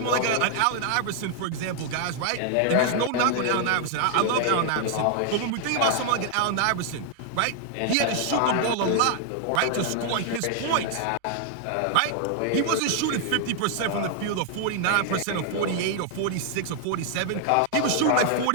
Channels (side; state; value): both; different; correlation 0.00